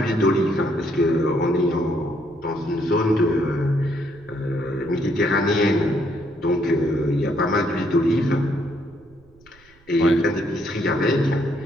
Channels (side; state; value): right; noise; rumble, 29 dB below the sound